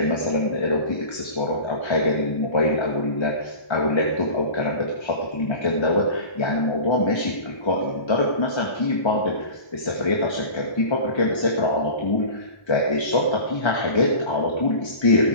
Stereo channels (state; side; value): late; right; 1.3 ms